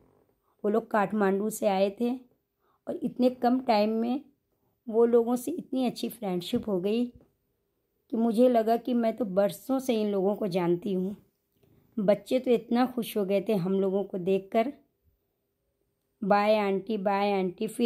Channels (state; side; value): identical; both; correlation 1.00